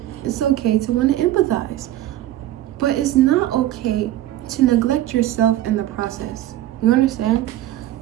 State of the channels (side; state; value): left; quieter; 13.9 dB